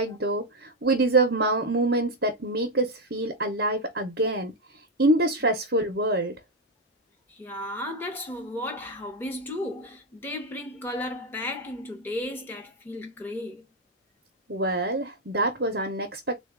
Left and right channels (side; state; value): both; normal; correlation 0.05